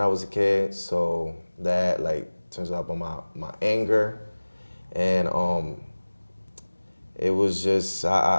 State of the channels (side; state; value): both; inverted; correlation -1.00